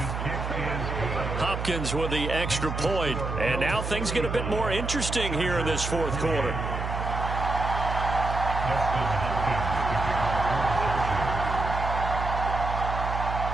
Hopkins with the extra point. And now things get a bit more interesting here in this fourth quarter.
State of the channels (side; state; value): right; noise; hum, 4 dB below the sound